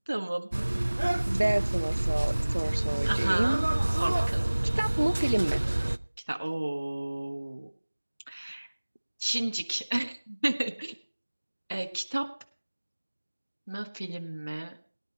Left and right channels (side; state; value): both; inverted; correlation -1.00